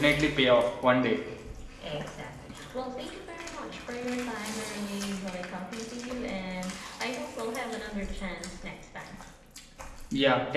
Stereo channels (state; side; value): identical; both; correlation 1.00